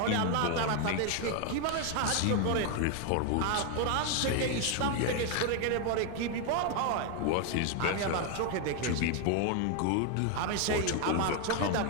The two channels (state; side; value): different; both; correlation 0.01